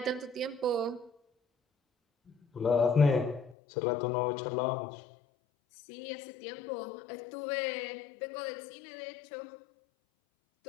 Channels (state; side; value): drops out; right; at 3.6 s